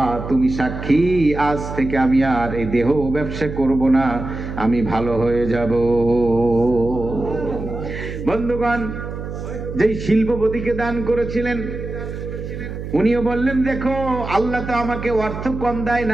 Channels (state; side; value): noise; right; hum, 8 dB below the sound